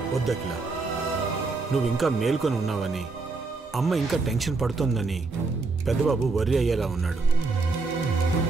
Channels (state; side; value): quieter; left; 3.9 dB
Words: వద్దకిలా, నువ్వు ఇంకా మేల్కొని ఉన్నావని, అమ్మ ఇంకా టెన్షన్ పడుతోందని పెద్దబాబు వర్రీ అయ్యేలా ఉన్నాడు.